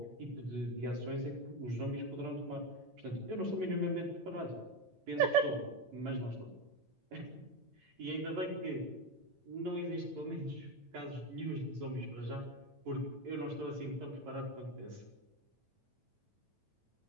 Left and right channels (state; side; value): late; left; 9.0 ms